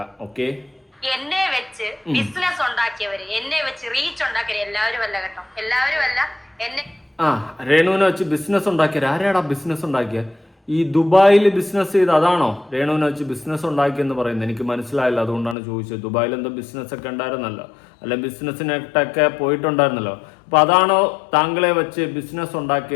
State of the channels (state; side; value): drops out; right; at 15.6 s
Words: ഓക്കെ, എന്നെ വെച്ച് ബിസിനസ് ഉണ്ടാക്കിയവര്, എന്നെ വെച്ച് റീച്ച് ഉണ്ടാക്കിയവര്, എല്ലാവരും അല്ല കേട്ടോ, എല്ലാവരും അല്ല. രേണുവിനെ വെച്ച് ബിസിനസ് ഉണ്ടാക്കിയത് ആരാടാ? ബിസിനസ് ഉണ്ടാക്കിയ ഈ ദുബായിൽ ബിസിനസ് ചെയ്ത് അതാണോ രേണുവിനെ വെച്ച് ബിസിനസ് ഉണ്ടാക്കിയെന്ന് പറയുന്നത്? എനിക്ക് മനസ്സിലായില്ല, അതുകൊണ്ടാണ് ചോദിച്ചത്. ദുബായിൽ എന്തോ ബിസിനസ് ഒക്കെ ഉണ്ടായിരുന്നല്ലോ, അല്ല ബിസിനസ്സിനൊക്കെ പോയിട്ടുണ്ടായിരുന്നല്ലോ. അപ്പൊ അതാണോ താങ്കളെ വെച്ച് ബിസിനസ്